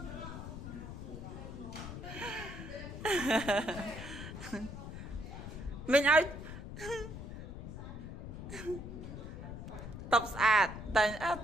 មិញឲ្យតបស្អាតតែ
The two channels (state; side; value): noise; left; rumble, 9 dB below the sound